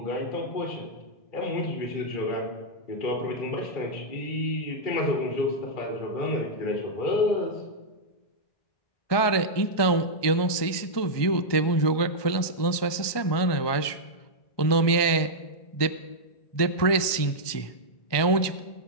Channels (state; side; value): late; right; 1.2 ms